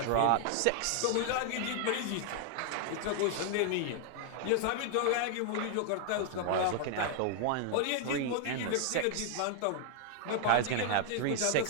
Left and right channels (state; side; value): different; both; correlation 0.00